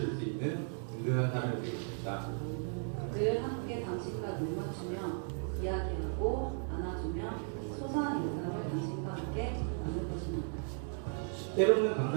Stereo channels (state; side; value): silent; left; 54 dB below the other